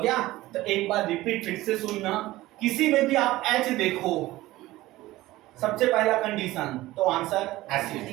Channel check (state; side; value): quieter; left; 17.4 dB